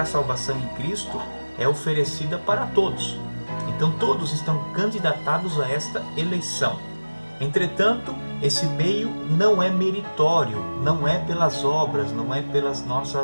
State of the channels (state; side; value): inverted; both; correlation -1.00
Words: a salvação em Cristo é oferecida para todos. Então todos estão candidatados a esta eleição. Entretanto, esse meio não é meritório, não é pelas obras, não é pelas